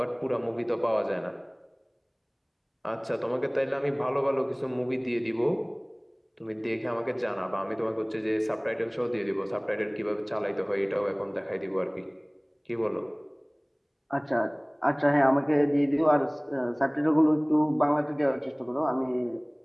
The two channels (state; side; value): identical; both; correlation 1.00